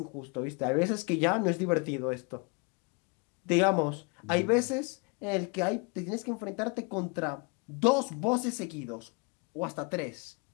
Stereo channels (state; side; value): quieter; right; 32.6 dB